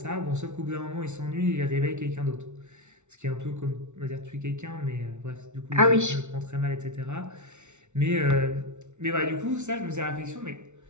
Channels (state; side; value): late; left; 0.83 ms